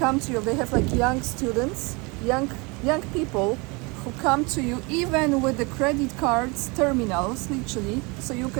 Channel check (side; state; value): left; quieter; 28.1 dB